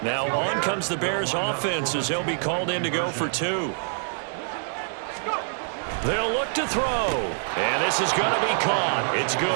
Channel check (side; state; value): left; silent; digital silence